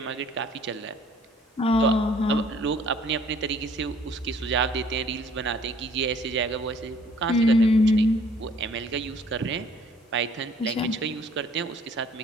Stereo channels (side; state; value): both; normal; correlation 0.58